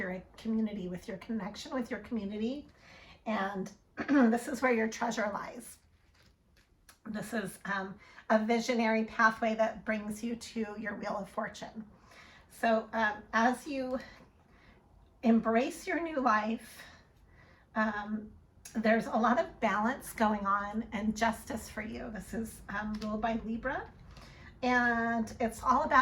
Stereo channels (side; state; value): both; identical; correlation 1.00